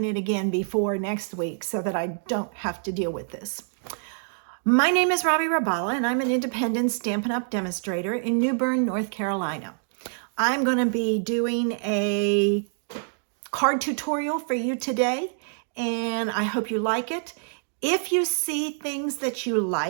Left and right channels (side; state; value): left; silent; digital silence